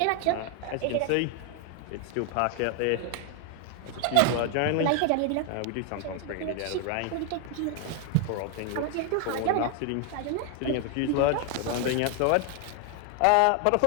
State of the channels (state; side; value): different; both; correlation 0.00